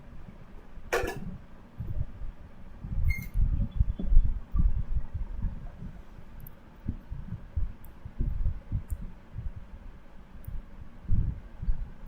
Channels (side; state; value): both; identical; correlation 1.00